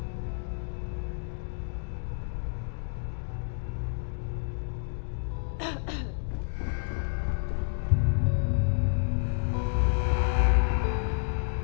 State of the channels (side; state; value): right; silent; digital silence